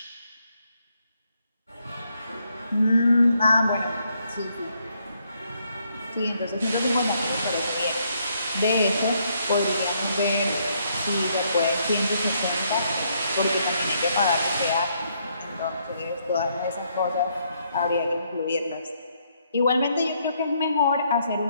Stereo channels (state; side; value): inverted; both; correlation -0.73